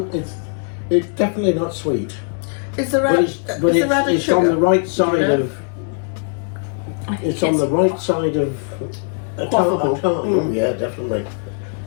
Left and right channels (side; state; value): right; silent; 59 dB below the other